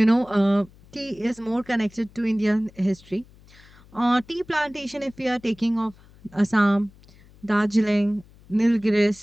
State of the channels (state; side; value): noise; left; hum, 25 dB below the sound